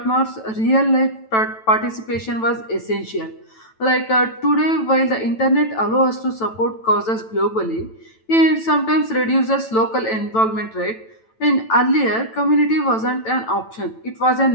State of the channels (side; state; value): right; late; 9.1 ms